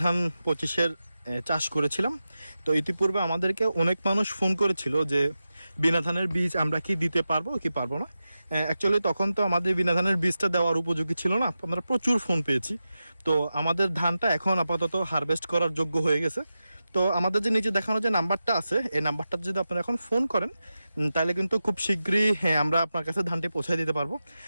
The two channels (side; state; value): both; inverted; correlation -0.92